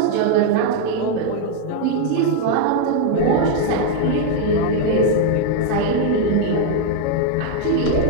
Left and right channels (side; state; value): both; different; correlation 0.00